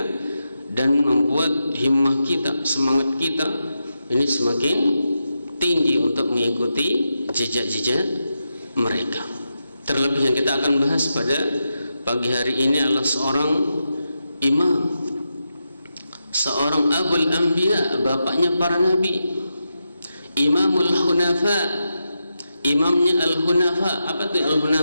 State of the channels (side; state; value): both; inverted; correlation -0.88